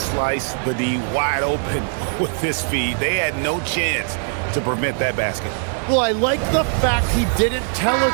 the D wide open with his feet. They had no chance to prevent that basket. Well, I like the fact he didn't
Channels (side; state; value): left; silent; digital silence